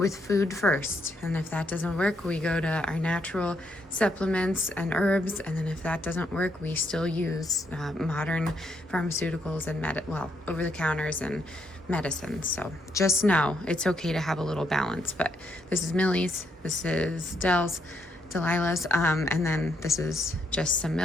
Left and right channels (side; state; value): both; normal; correlation 0.76